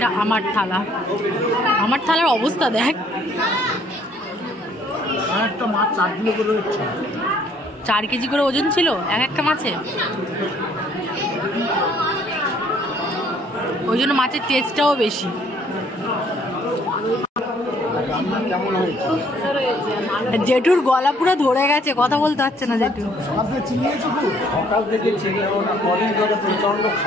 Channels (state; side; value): normal; both; correlation 0.62